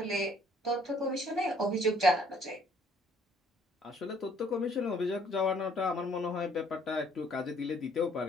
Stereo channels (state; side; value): normal; both; correlation 0.61